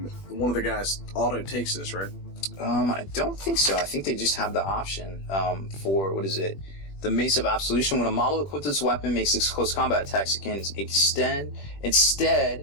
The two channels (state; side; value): late; right; 21 ms